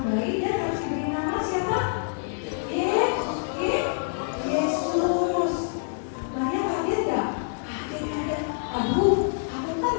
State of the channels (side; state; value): right; silent; digital silence